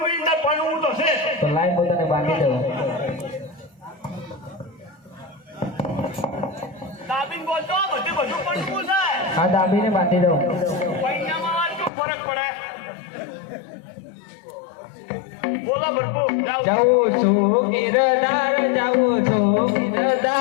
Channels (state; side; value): drops out; right; at 11.9 s